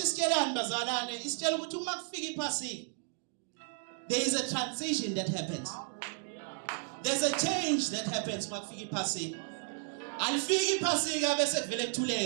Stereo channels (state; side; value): silent; left; 55 dB below the other